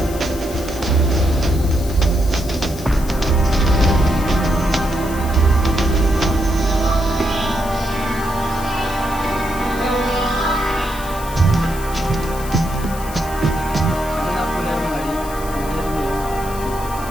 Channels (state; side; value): noise; left; hiss, 15 dB below the sound